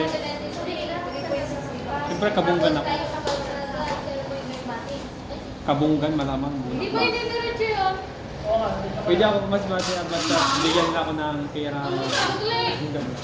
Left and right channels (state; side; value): identical; both; correlation 1.00